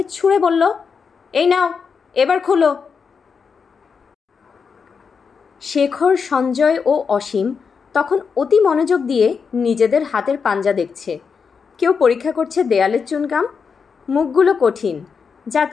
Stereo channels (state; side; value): quieter; right; 5.8 dB